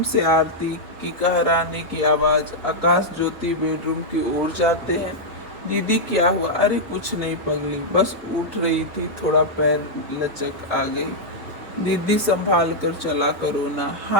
से आरती की कहराने की आवाज़। आकाश ज्योति बेडरूम की ओर जाते हैं। दीदी क्या हुआ? अरे कुछ नहीं पगली, बस उठ रही थी, थोड़ा पैर लचक आ गई। दीदी संभाल कर चला करो ना।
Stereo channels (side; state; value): both; normal; correlation -0.05